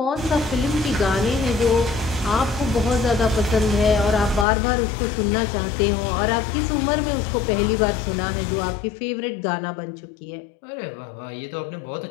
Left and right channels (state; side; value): drops out; right; at 4.5 s